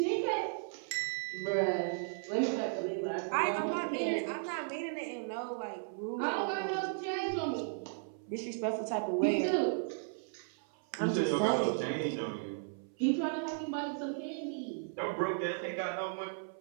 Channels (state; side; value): silent; left; 54 dB below the other